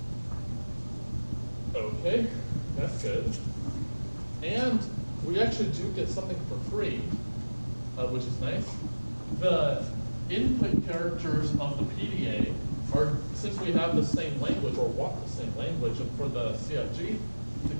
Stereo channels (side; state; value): both; inverted; correlation -1.00